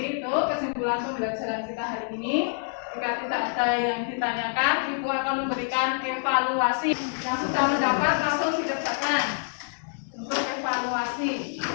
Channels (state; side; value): silent; right; 60 dB below the other